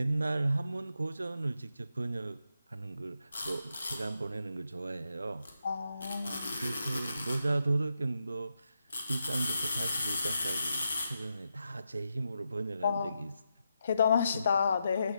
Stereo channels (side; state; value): both; inverted; correlation -0.84